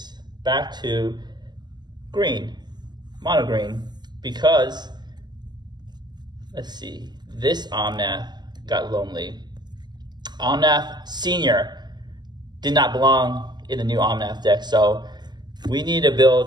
back to green, mono green, because, let's see, this Omnath got lonely. Omnath Senior did not belong in the new Omnath deck, so we need to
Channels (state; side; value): late; left; 0.21 ms